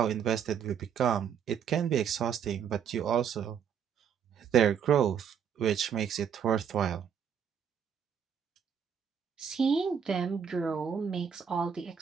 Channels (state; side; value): quieter; left; 7.7 dB